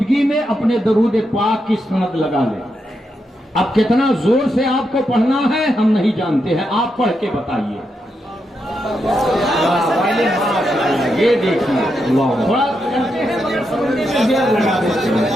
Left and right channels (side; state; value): both; normal; correlation 0.84